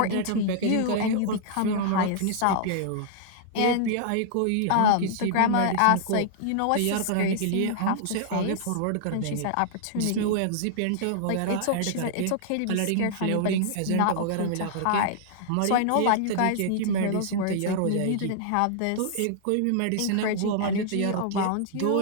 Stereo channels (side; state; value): both; different; correlation -0.01